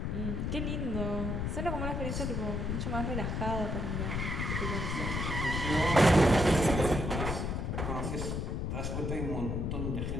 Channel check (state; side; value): noise; left; rumble, 1 dB below the sound